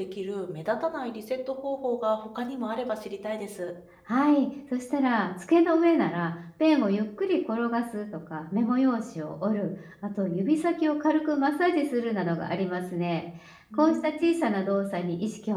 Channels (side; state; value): both; identical; correlation 1.00